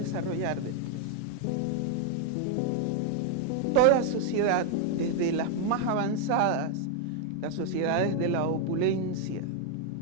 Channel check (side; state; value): both; different; correlation 0.00